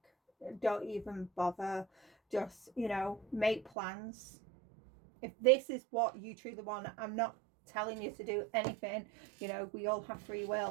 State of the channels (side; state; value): left; drops out; at 3.7 s